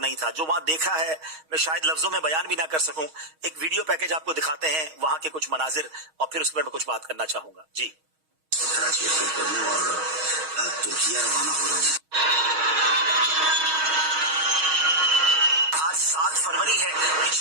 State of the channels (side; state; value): left; late; 6.3 ms